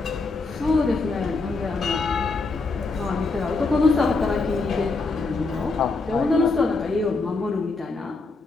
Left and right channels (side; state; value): right; quieter; 3.8 dB